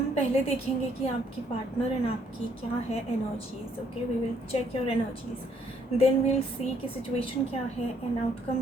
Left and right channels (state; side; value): normal; both; correlation 0.68